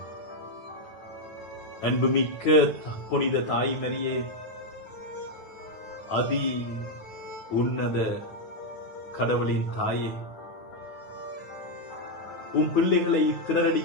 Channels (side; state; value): right; late; 9.5 ms